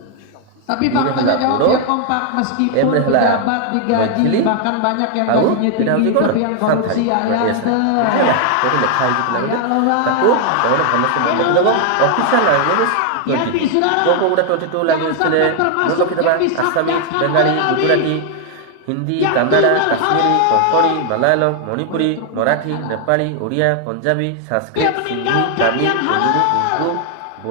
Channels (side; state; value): both; different; correlation 0.00